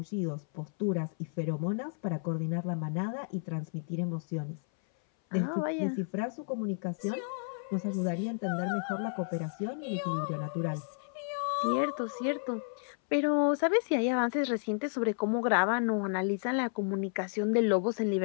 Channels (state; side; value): silent; right; 56 dB below the other